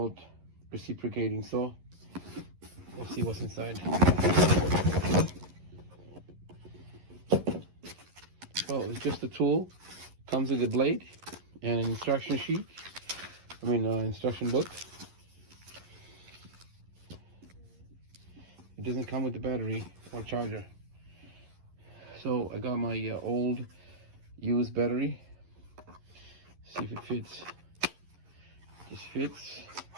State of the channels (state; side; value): late; left; 11 ms